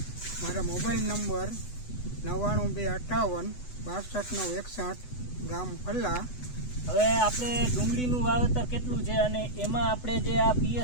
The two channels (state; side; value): late; right; 8.0 ms